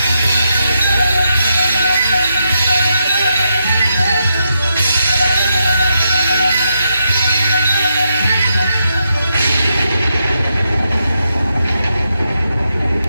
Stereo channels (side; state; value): both; inverted; correlation -0.82